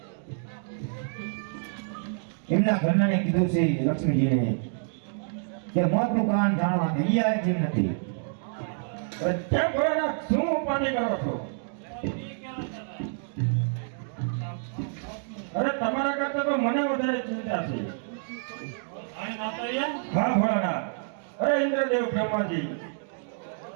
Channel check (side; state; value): left; silent; digital silence